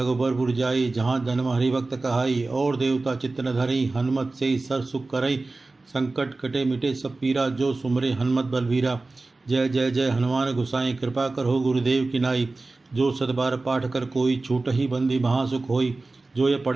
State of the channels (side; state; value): left; quieter; 3.4 dB